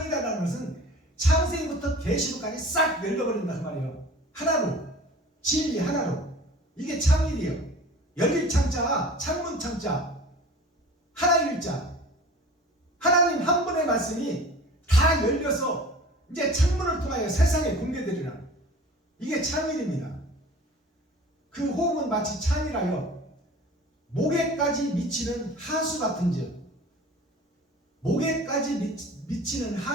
것은 창세기부터 계시록까지 싹 열려버린다 그 말이에요. 하나로, 진리 하나로. 이게 창일이에요. 열릴 창자, 창문 창자, 하나일자. 하나님 한 분의 말씀이 다 열려서 이제 창문을 통하여 세상에 공개되리라. 이게 창일입니다. 그 호흡은 마치 창이라요. 목에까지 미치는 하수 같은즉. 목에까지 미치는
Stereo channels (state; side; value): normal; both; correlation 0.42